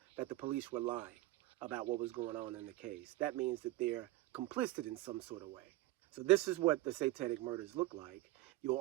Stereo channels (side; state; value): left; quieter; 17.8 dB